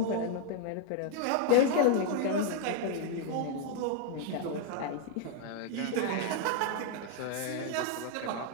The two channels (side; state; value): both; different; correlation 0.00